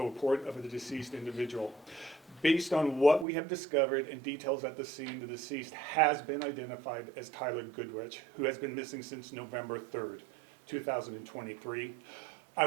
a report of a deceased individual. Based on what we have discovered and details at the scene, the deceased has been identified as Tyler Goodrich, who has been missing since November 3rd, 2023. I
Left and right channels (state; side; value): drops out; left; at 3.2 s